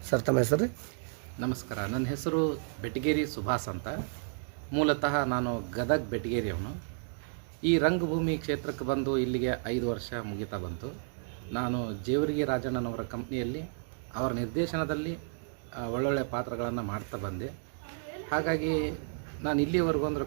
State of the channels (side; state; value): left; silent; digital silence